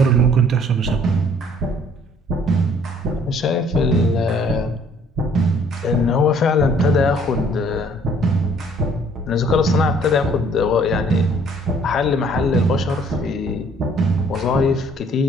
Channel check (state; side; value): normal; both; correlation 0.59